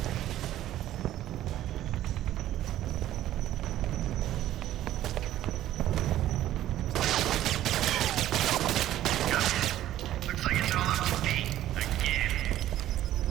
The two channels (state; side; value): quieter; left; 13.2 dB